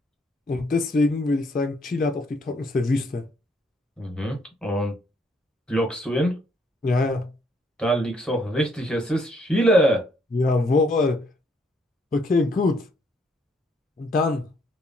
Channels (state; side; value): normal; both; correlation 0.69